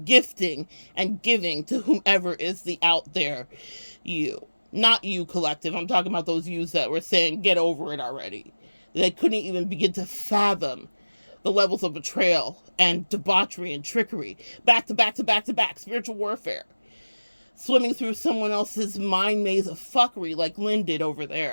and giving to whomever is the out there you. Not you, collective. I'm talking about those yous that were saying, get over it already. They couldn't even begin to fathom the levels of betrayal and debauchery and trickery. Back to back to back to back. Spiritual warfare. Swimming through someone else's mind maze of fuckery like Lynn did over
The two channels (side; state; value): both; inverted; correlation -1.00